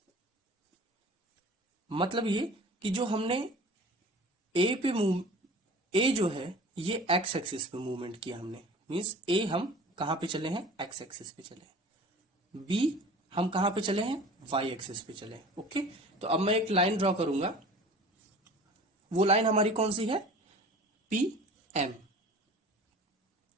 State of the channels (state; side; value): normal; both; correlation 0.42